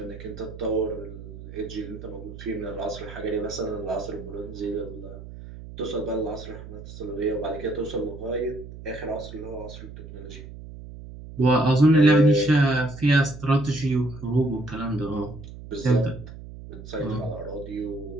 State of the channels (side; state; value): right; noise; hum, 13 dB below the sound